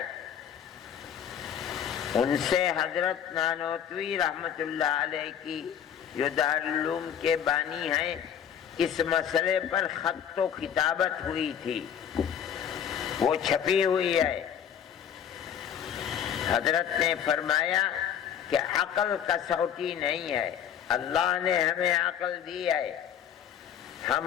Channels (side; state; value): right; quieter; 8.9 dB